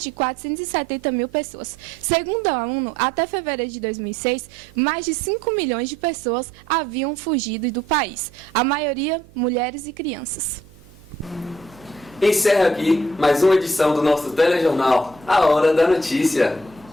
de 470 mil pessoas. Segundo a ONU, até fevereiro de 2006, mais de 5 milhões de pessoas haviam fugido do país, a maioria mulheres e crianças. Encerra aqui mais uma edição do nosso telejornal A Hora da Notícia.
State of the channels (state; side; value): noise; right; hum, 25 dB below the sound